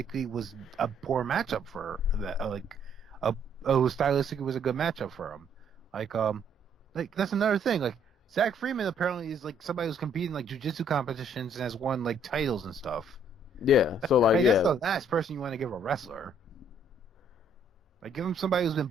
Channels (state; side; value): normal; both; correlation 0.65